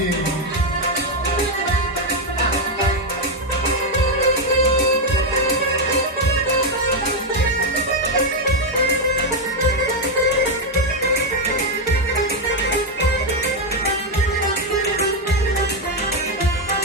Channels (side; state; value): both; normal; correlation 0.03